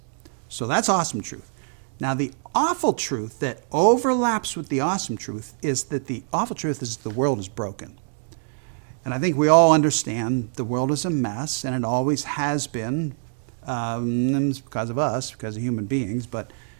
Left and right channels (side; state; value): left; silent; digital silence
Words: So that's awesome truth. Now the awful truth that overlaps with the awesome truth is that the awful truth is the world is broken. And I think we all understand the world is a mess, and it always has been, and it's because of us, because of human beings, but